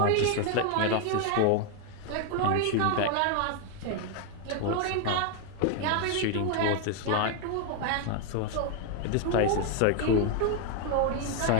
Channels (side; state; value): both; different; correlation 0.01